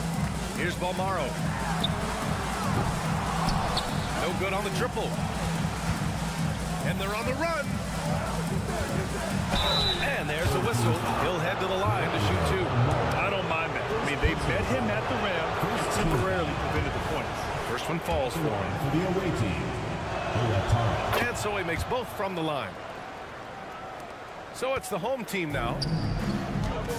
Here's Balmaro. No good on the triple. And they're on the run. And there's a whistle. He'll head to the line to shoot 2. I don't mind that. I mean, they met him at the rim and temporarily prevented the points. First one falls for him. For the away team. And so he makes both from the line. So it's the home team now.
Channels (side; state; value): both; identical; correlation 1.00